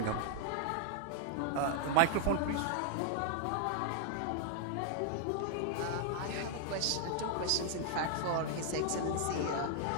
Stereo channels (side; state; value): both; different; correlation 0.00